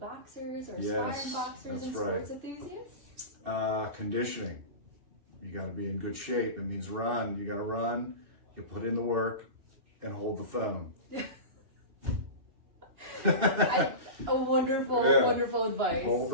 or aspiring boxers and sports enthusiasts? Conditioning. You got to be in good shape. It means run. You got to run. You put in the work and hold the phone. Wonderful advice. Hold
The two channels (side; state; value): left; late; 2.6 ms